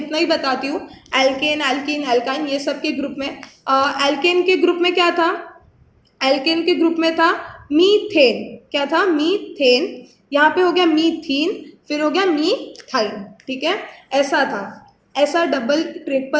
ही बताती हूँ। एल्केन, एल्कीन, एल्काइन, ये सब के ग्रुप में, एल्केन के ग्रुप में क्या था? एल्केन के ग्रुप में था मीथेन। क्या था? मीथेन। यहाँ पे हो गया मीथीन, फिर हो गया मीथाइन, ठीक है। ऐसा था, ऐसा डबल,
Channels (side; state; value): both; identical; correlation 1.00